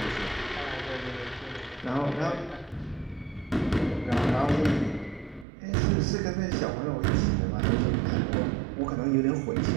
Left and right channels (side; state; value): left; drops out; at 5.5 s